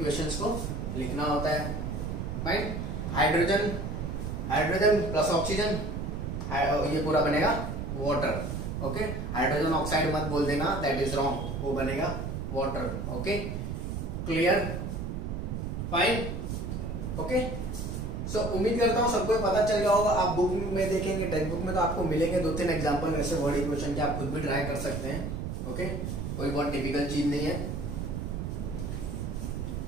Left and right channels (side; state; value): right; noise; rumble, 4 dB below the sound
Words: को लिखना होता है, right. Hydrogen, hydrogen plus oxygen, ये पूरा बनेगा वाटर, ओके। हाइड्रोजन ऑक्साइड मत बोल देना, दैट इज रॉन्ग, वो बनेगा water, okay clear fine, okay. So उम्मीद करता हूं सबको पता चल गया होगा। आप बुक में देखेंगे, टेक्स्ट बुक में तो आपको मिलेंगे 2-3 एग्जांपल ऐसे वर्ड इक्वेशन के, आप खुद भी ट्राई कर सकते हैं, ओके, कोई बहुत डिफिकल्ट चीज नहीं है।